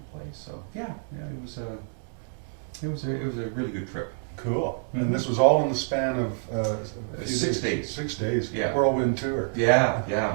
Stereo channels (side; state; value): left; silent; digital silence